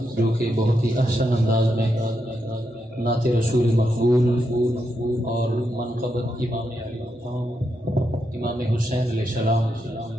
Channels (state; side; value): normal; both; correlation 0.83